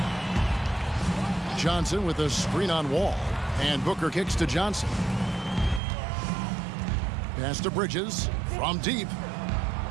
Johnson with a screen on Wall. And Booker kicks to Johnson. Pass to Bridges from deep.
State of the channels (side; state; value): left; drops out; at 5.8 s